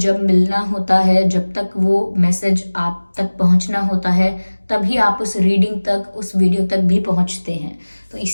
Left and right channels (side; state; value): both; inverted; correlation -1.00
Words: मिलना होता है, जब तक वो मैसेज आप तक पहुंचना होता है, तभी आप उस रीडिंग तक, उस वीडियो तक भी पहुंचते हैं। तो